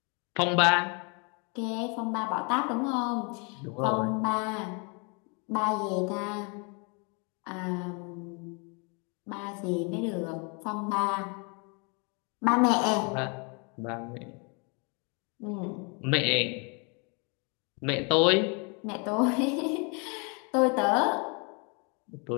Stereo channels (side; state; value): right; quieter; 33.7 dB